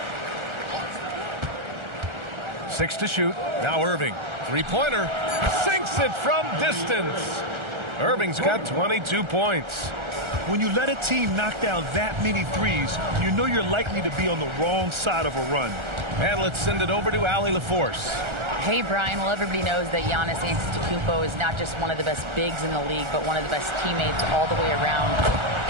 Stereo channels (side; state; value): left; late; 1.4 ms